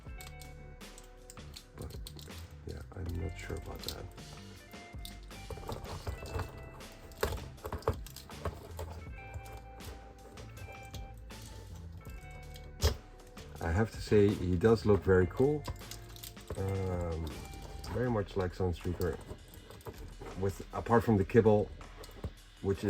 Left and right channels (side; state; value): both; identical; correlation 1.00